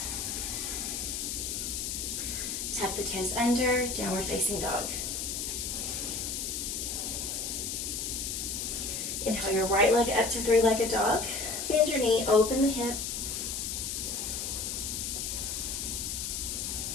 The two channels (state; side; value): noise; left; hiss, 3 dB below the sound